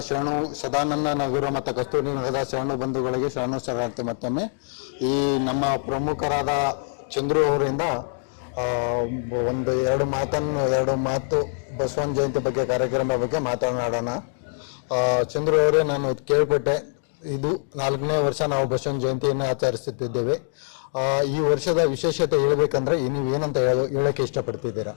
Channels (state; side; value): silent; right; digital silence